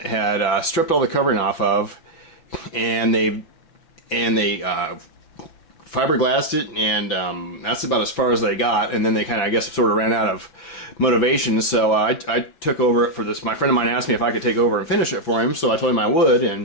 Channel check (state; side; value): late; right; 6.0 ms